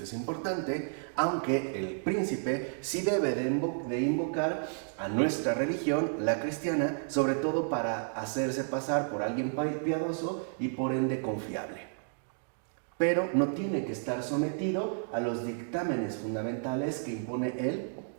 es importante, aunque el príncipe sí debe de invocar a nuestra religión, la cristiana, sobre todo para hacerse pasar por alguien piadoso y por ende confiable. Pero no tiene que estar sometido a los dictámenes fundamentales que impone el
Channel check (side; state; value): left; silent; digital silence